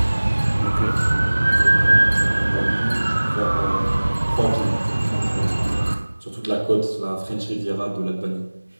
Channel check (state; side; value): inverted; both; correlation -1.00